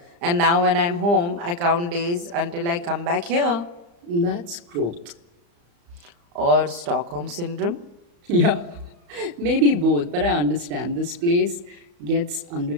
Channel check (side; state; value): left; late; 35 ms